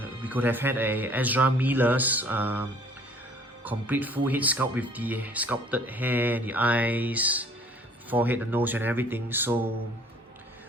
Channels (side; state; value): both; normal; correlation 0.54